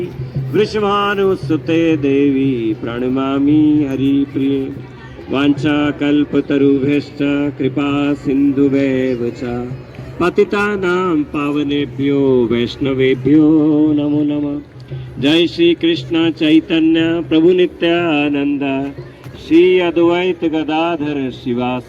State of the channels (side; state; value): both; identical; correlation 1.00